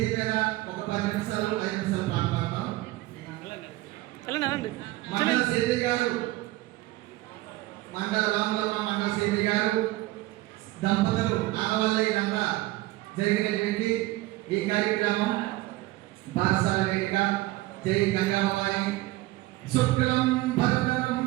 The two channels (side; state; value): left; quieter; 18.6 dB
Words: మీద ఒక 10 నిమిషాలు 5 నిమిషాలు పాట పాడతాం. మండల సేది గారు, మండల రాములమ్మ మండల సేది గారు దంపతులు ఆడవాళ్ళ ఇదంతా జరిగినటువంటి ఈ కార్యక్రమం బారసాల వేదిక జై గంగాభవాని శుక్లం భరతరం